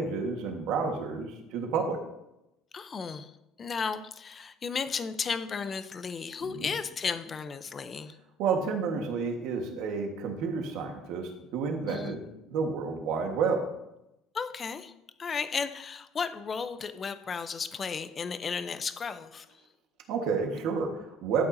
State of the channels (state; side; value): normal; both; correlation 0.57